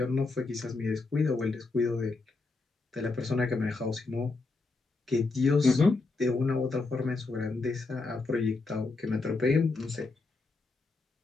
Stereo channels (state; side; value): quieter; right; 3.7 dB